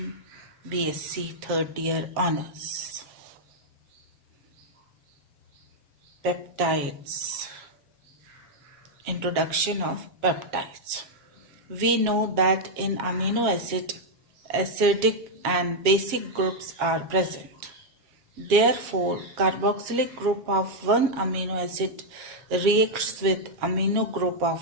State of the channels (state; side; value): late; left; 7.3 ms